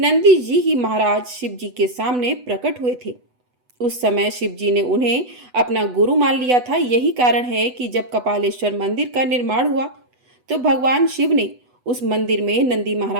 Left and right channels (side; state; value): left; late; 8.1 ms